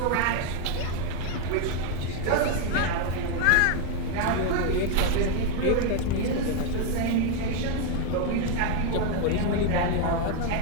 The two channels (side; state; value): both; different; correlation 0.01